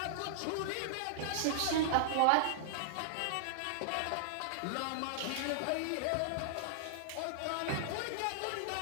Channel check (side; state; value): both; different; correlation -0.01